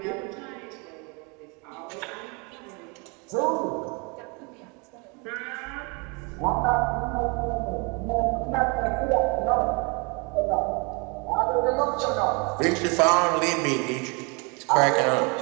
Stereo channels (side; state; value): left; quieter; 31.0 dB